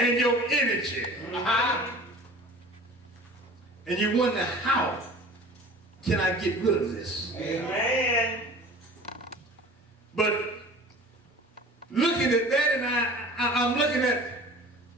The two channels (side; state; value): both; normal; correlation 0.42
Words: your energy. And you wonder, how can I get rid of this? Amen. But looking at that, and I'm looking at